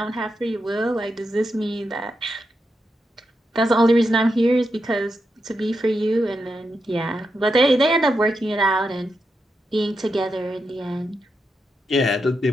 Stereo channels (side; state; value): both; normal; correlation 0.86